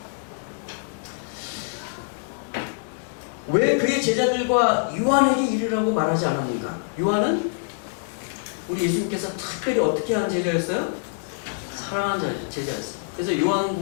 왜 그의 제자들과 요한에게 이르라고 말하지 않았는가? 요한은 우리 예수님께서 특별히 어떻게 한 제자였어요? 사랑하는 제자였어요. 그래서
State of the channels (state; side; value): silent; right; 62 dB below the other